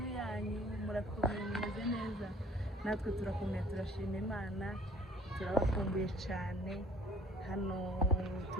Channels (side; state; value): both; normal; correlation 0.54